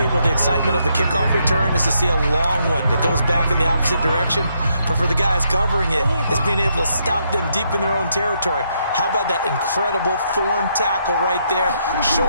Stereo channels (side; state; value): both; inverted; correlation -0.76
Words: the excitement of the kickoff return is to see a long one that goes back in the opposite direction. But for the guys covering it, it's being able to stop them deep in their own territory. How about that incredible form tackle right there?